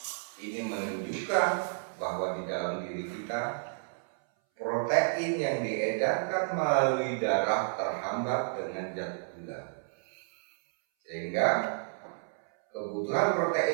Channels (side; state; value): left; silent; 57 dB below the other